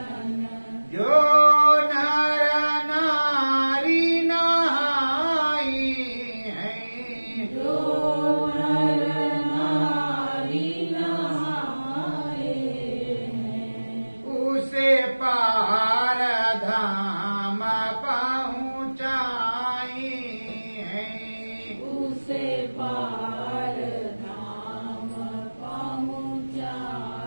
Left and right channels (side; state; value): both; inverted; correlation -1.00